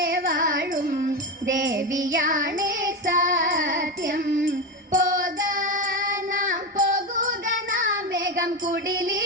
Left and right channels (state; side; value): normal; both; correlation 0.16